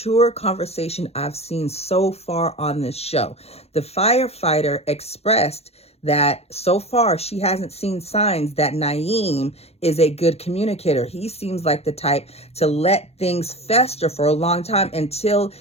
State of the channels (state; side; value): late; right; 0.30 ms